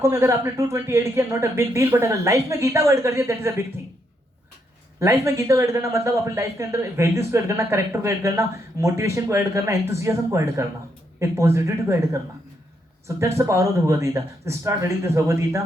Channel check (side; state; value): both; normal; correlation 0.77